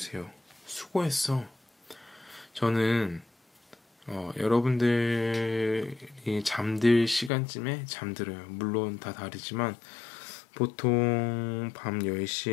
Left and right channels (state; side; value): drops out; right; at 7.3 s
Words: 수고했어. 저는 여러분들이 잠들 시간쯤에 잠들어요. 물론 다 다르지만 보통 밤